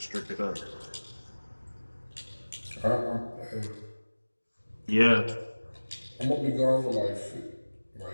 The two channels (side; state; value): both; inverted; correlation -1.00